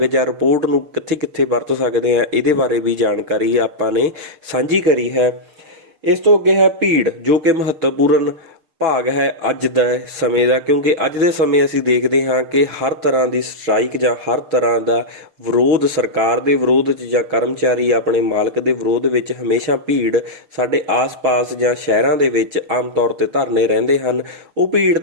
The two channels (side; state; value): left; late; 6.6 ms